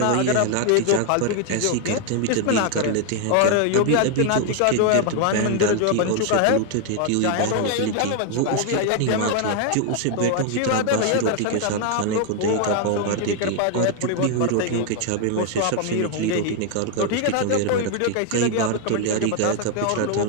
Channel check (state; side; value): different; both; correlation 0.00